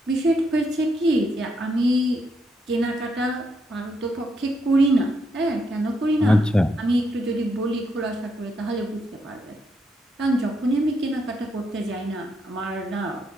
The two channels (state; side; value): normal; both; correlation 0.78